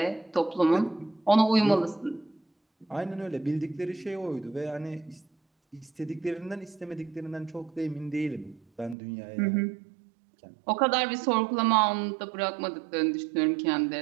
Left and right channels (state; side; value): drops out; left; at 9.0 s